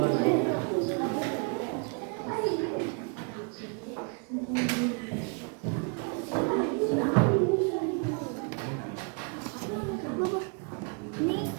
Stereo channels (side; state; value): left; quieter; 37.2 dB